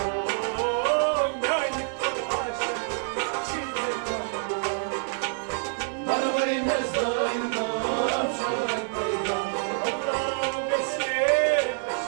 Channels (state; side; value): silent; left; 60 dB below the other